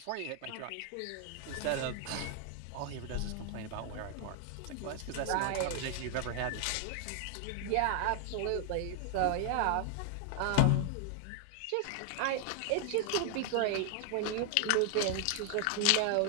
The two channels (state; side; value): different; both; correlation 0.00